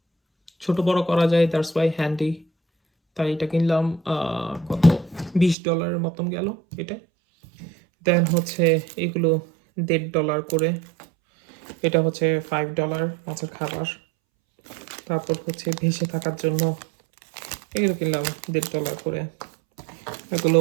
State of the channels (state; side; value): drops out; left; at 5.6 s